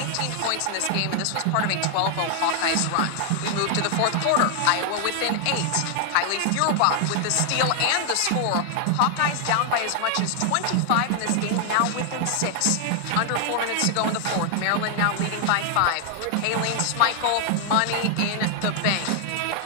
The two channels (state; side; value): different; both; correlation 0.00